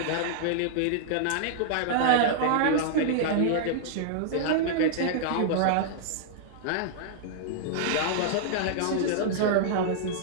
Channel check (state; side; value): different; both; correlation -0.01